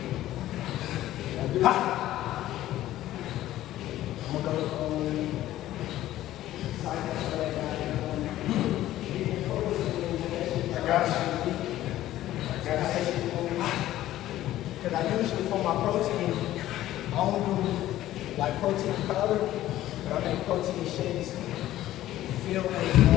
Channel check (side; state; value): right; quieter; 14.2 dB